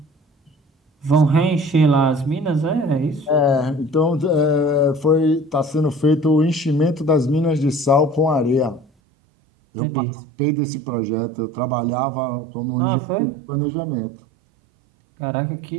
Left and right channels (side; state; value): left; drops out; at 8.8 s